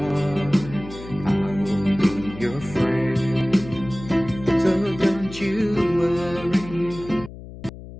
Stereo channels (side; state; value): left; noise; hum, 14 dB below the sound